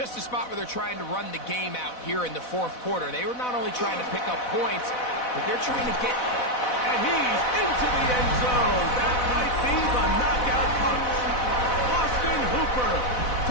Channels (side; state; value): right; late; 4.0 ms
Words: a spot where they're trying to run the game out here in the 4th quarter. They were not only trying to pick up points, but they're trying to get... And he's into the end zone. That might be the knockout punch. Austin Hooper.